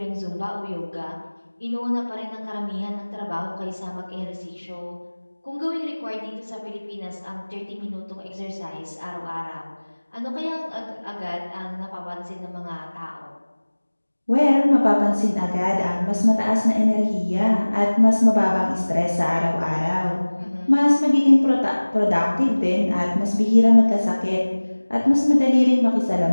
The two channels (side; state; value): both; inverted; correlation -1.00